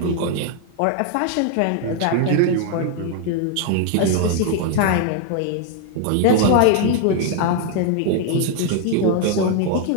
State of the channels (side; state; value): both; different; correlation 0.00